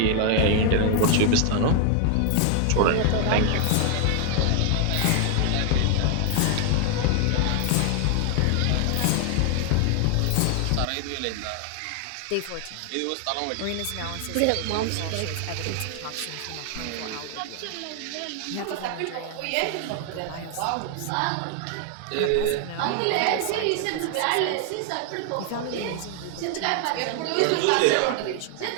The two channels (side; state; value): both; different; correlation 0.00